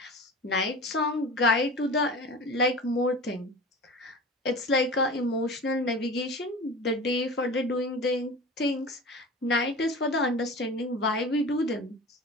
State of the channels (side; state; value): both; normal; correlation 0.35